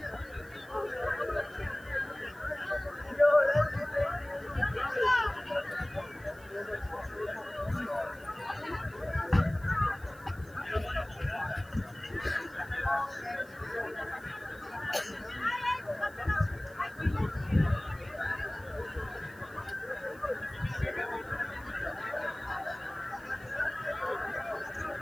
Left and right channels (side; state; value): right; noise; hiss, 24 dB below the sound